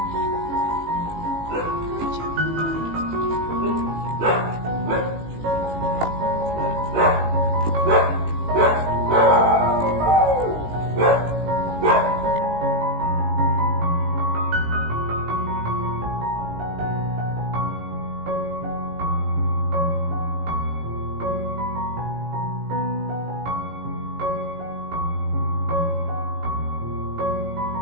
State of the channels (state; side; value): late; left; 18 ms